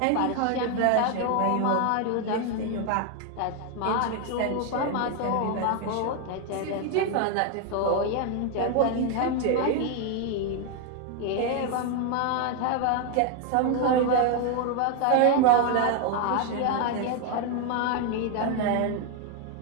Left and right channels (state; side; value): different; both; correlation 0.01